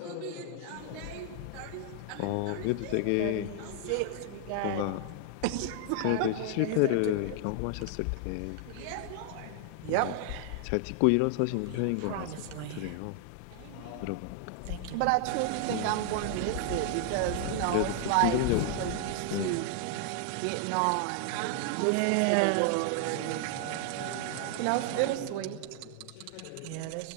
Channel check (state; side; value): different; both; correlation 0.00